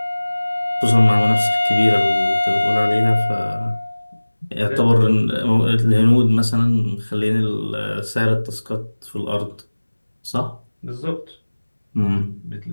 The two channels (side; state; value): both; inverted; correlation -1.00